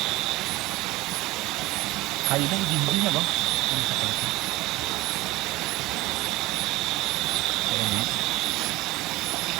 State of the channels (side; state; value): left; quieter; 19.5 dB